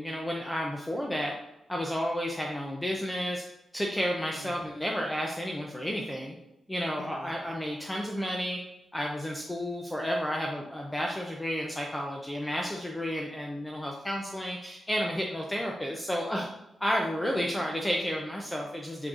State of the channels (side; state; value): both; normal; correlation 0.92